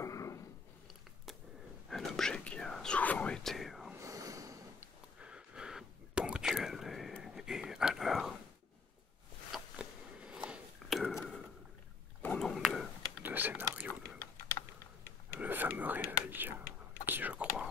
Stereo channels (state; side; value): quieter; right; 4.9 dB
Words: Un objet qui a souvent été ponctuel et à l'heure de mon nombre de scénarios, le fameux réveil qui, je